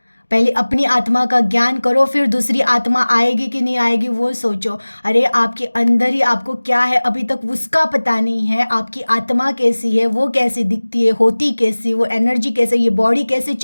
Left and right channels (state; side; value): inverted; both; correlation -1.00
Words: पहले अपनी आत्मा का ज्ञान करो, फिर दूसरी आत्मा आएगी कि नहीं आएगी वो सोचो। अरे आपके अंदर ही आपको क्या है अभी तक उसका पता नहीं है। आपकी आत्मा कैसी है, वो कैसे दिखती है, होती कैसी, वो एनर्जी कैसे, ये बॉडी कैसे